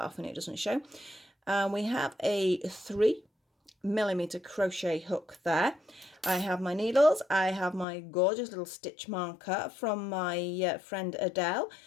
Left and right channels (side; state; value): right; drops out; at 7.9 s